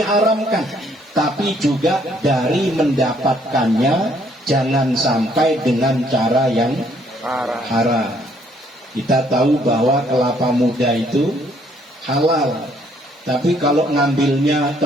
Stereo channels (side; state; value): both; normal; correlation 0.66